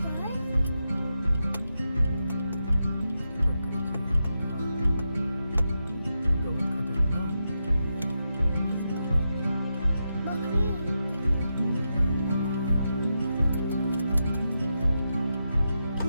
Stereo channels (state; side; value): inverted; both; correlation -0.87